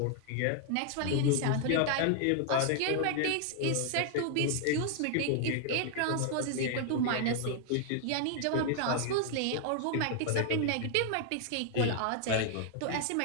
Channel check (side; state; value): both; different; correlation 0.00